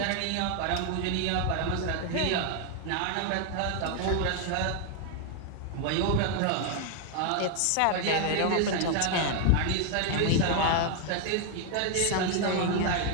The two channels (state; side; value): different; both; correlation 0.00